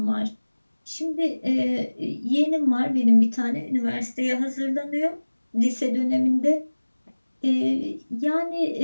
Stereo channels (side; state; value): both; inverted; correlation -1.00